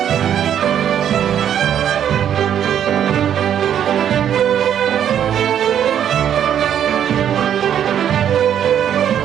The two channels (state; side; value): quieter; left; 9.6 dB